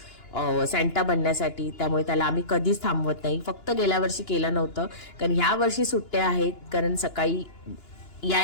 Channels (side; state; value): right; late; 2.9 ms